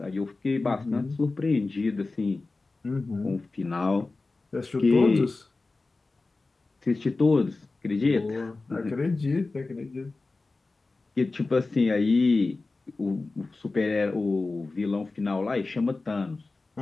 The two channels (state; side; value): quieter; right; 3.5 dB